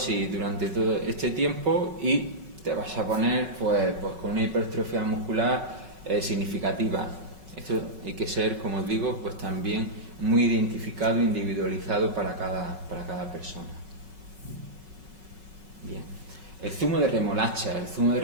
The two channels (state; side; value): late; left; 5.4 ms